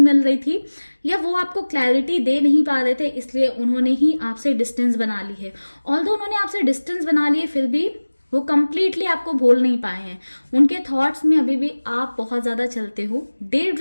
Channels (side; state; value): both; inverted; correlation -1.00